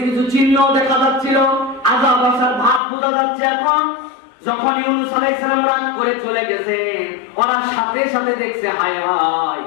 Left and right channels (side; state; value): right; drops out; at 2.8 s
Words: কিছু চিহ্ন দেখা যাচ্ছিল, আযাব আসার ভাব বোঝা যাচ্ছে। এখন যখন ইউনূস আলাইহিস সালাম রাগ করে চলে গেছেন, ওরা সাথে সাথে দেখছে হায় হায়